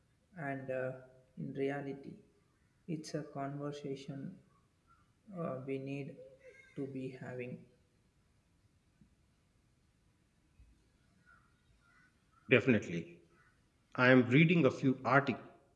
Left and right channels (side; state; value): both; identical; correlation 1.00